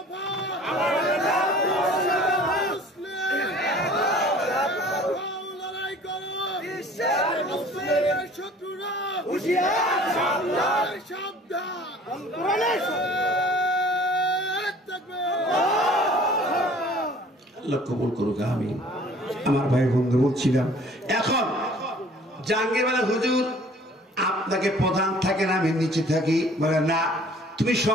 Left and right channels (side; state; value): both; normal; correlation 0.50